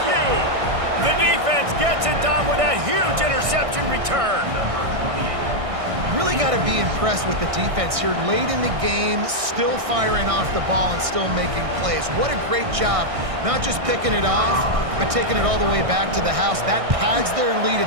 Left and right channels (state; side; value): late; left; 1.6 ms